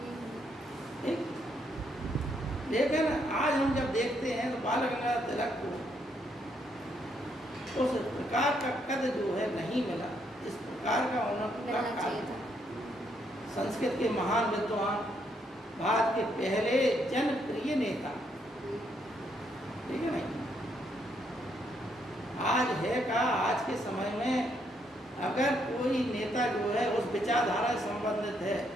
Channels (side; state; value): both; normal; correlation 0.74